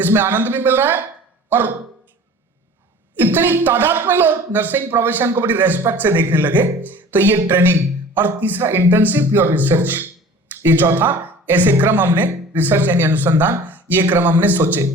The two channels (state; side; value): normal; both; correlation 0.44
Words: इसमें आनंद भी मिल रहा है और इतनी तादाद में लोग नर्सिंग प्रोफेशन को बड़ी रेस्पेक्ट से देखने लगे। तो ये ट्रेनिंग, और तीसरा इंटर्नशिप और रिसर्च, ये चौथा ऐसे क्रम हमने, रिसर्च यानी अनुसंधान, ये क्रम हमने सोचे।